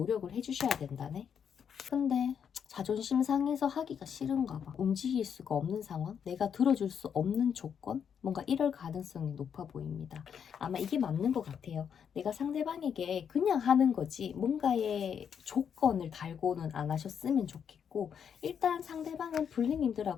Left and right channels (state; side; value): quieter; right; 7.7 dB